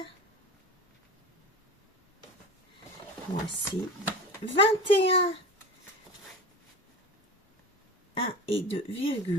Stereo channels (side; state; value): both; normal; correlation 0.30